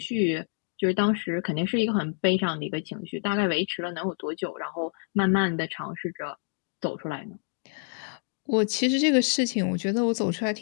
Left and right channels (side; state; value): right; silent; digital silence